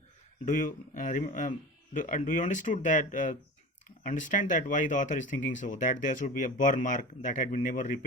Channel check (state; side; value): normal; both; correlation 0.34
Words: Do you do you understand that why the author is thinking so, that there should be a burn mark that had been never